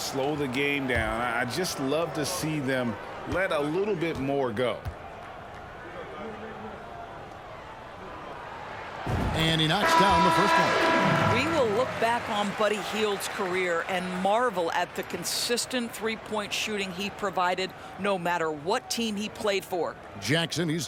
the game down. I just love to see them let a little bit more go. And he knocks down the first one. We will look back on Buddy Hield's career and marvel at the consistent three-point shooting he provided no matter what team he played for. Jackson, he's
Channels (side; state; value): both; identical; correlation 1.00